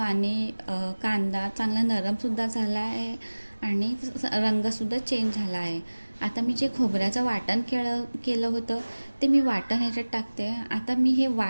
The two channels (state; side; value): inverted; both; correlation -1.00